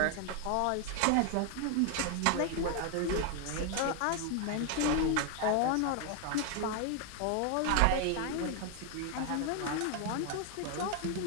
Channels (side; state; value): both; different; correlation 0.01